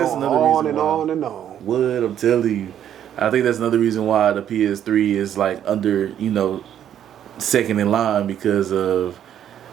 another reason why. On and on. What I'm telling you, I think that's another reason why the PS3 is like under, second in line, because of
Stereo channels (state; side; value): quieter; left; 10.1 dB